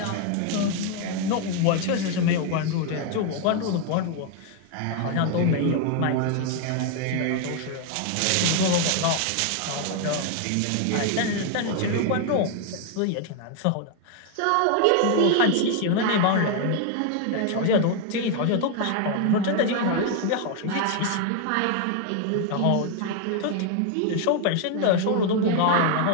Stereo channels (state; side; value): different; both; correlation 0.01